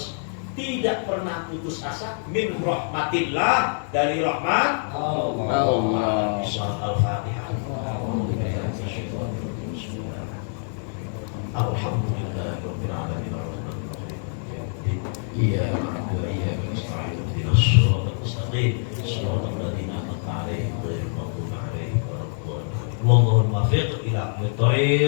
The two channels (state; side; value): silent; right; 62 dB below the other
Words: tidak pernah putus asa min rahmatillah, dari rahmat Allah. Al-Fatihah. Alhamdulillahirabbil alamin. إياك نعبد وإياك نستعين اهدنا الصراط المستقيم صراط الذين أنعمت عليهم غير المغضوب عليهم ولا الضالين اللهم وفق إلى